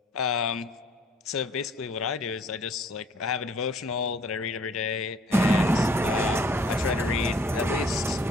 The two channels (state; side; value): normal; both; correlation 0.57